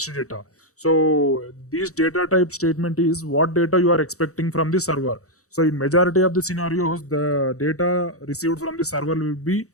data. So this data type statement is what data you are expecting from the server. So in majority of the scenarios, the data received from the server will be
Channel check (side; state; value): right; late; 0.65 ms